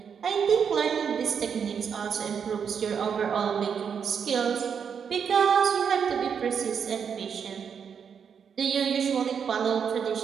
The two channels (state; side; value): quieter; left; 7.1 dB